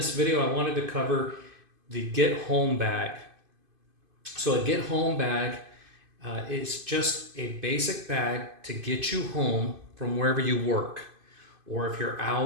video, I wanted to cover the Get Home bag. So a Get Home bag is just a basic bag to get you home from wherever you work. Or if you're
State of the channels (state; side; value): late; left; 2.5 ms